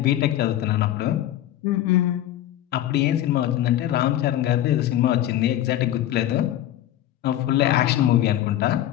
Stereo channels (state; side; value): quieter; right; 12.9 dB